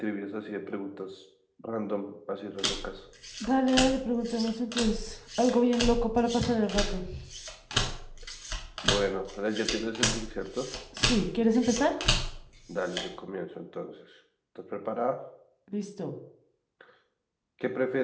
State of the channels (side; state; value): both; identical; correlation 1.00